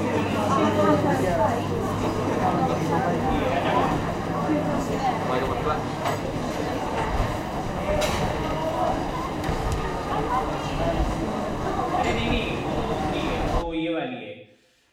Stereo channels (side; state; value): both; identical; correlation 1.00